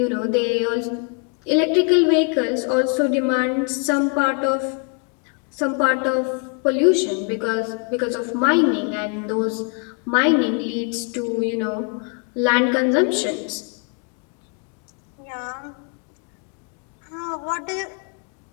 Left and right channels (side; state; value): right; quieter; 37.2 dB